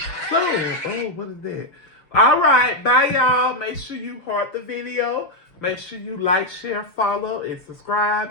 soon. Oh, what is that? All right, bye y'all. Make sure you heart the video. Make sure you like, share, follow, and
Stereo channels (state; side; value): late; right; 6.1 ms